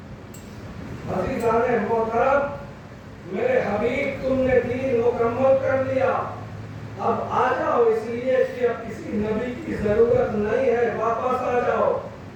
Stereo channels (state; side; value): identical; both; correlation 1.00